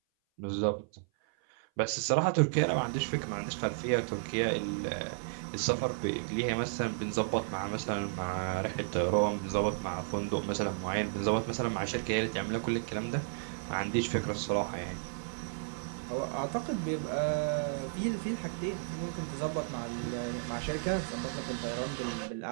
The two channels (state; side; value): silent; left; 56 dB below the other